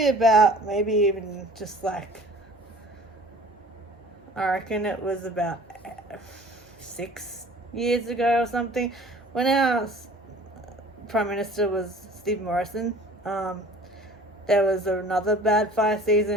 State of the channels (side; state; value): both; normal; correlation 0.47